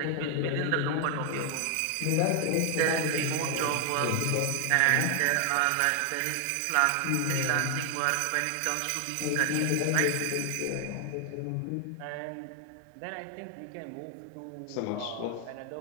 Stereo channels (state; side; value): different; both; correlation 0.00